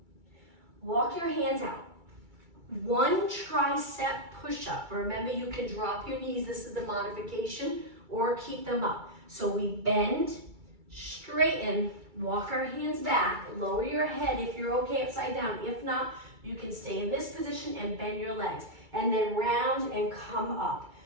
Walk your hands out. 1 tricep push-up. Remember, you can drop your knees. This is the modification, or keep them up. So we bend, straighten, walk our hands back, lower your head if you're okay upside down. If not, you can stay in this position and bend your legs. And then round and come up.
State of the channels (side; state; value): left; late; 2.3 ms